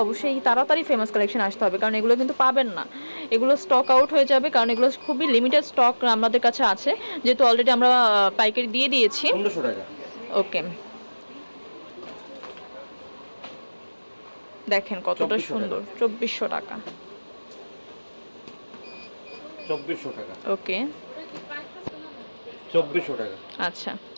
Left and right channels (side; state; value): both; inverted; correlation -1.00